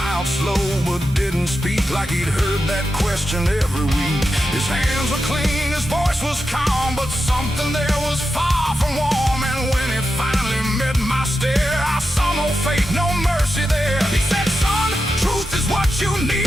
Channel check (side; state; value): both; normal; correlation 0.89